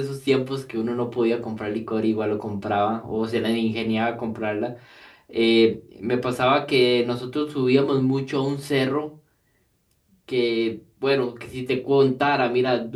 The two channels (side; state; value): both; identical; correlation 1.00